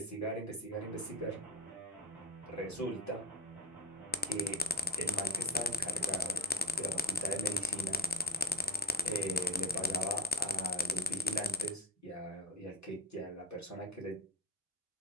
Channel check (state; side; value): normal; both; correlation 0.24